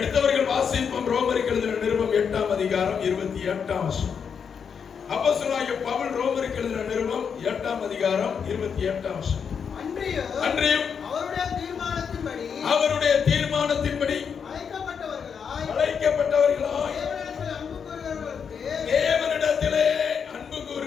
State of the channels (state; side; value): quieter; right; 6.8 dB